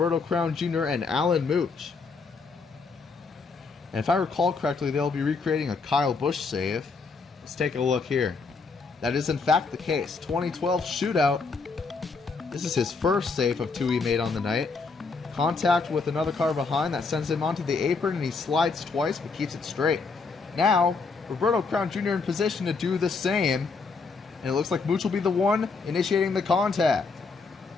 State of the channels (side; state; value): right; quieter; 4.5 dB